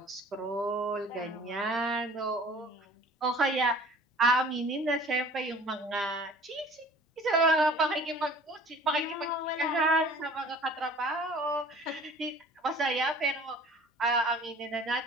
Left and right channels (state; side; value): normal; both; correlation 0.48